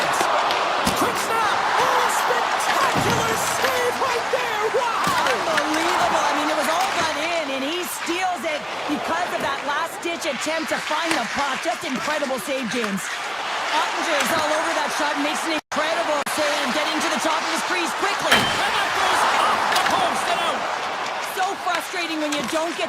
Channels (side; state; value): both; identical; correlation 1.00